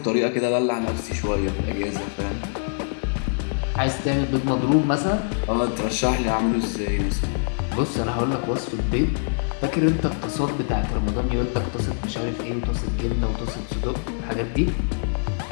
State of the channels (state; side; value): silent; right; digital silence